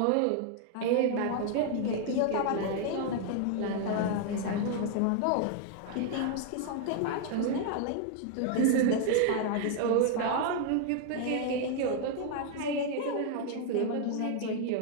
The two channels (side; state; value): both; different; correlation 0.00